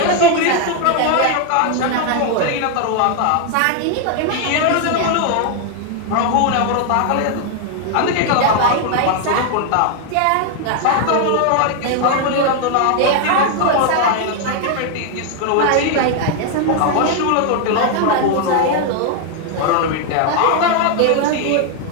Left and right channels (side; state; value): both; different; correlation 0.00